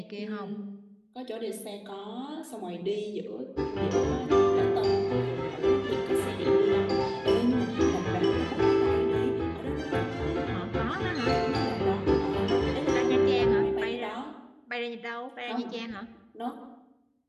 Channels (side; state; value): both; identical; correlation 1.00